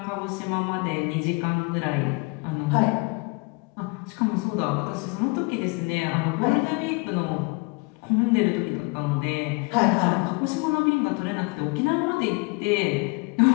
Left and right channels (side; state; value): right; quieter; 29.5 dB